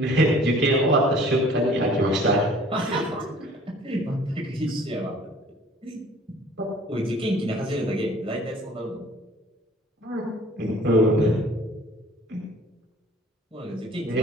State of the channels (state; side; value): normal; both; correlation 0.51